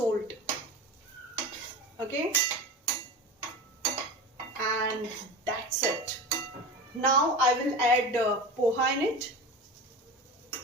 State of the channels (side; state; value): both; normal; correlation 0.29